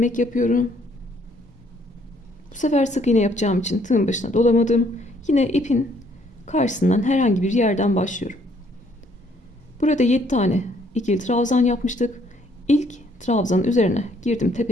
yapıyorum. Bu sefer sık iğne yapacağım için tığın başına dolamadım. Yine ipin karşısından herhangi bir yerden başlıyorum. Burada 7 tane ikili trabzan yapmıştık. İlk trabzanın üzerine girdim,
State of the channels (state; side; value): normal; both; correlation 0.65